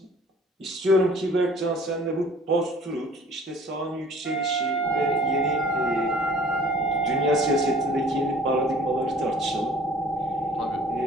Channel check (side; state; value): both; normal; correlation 0.51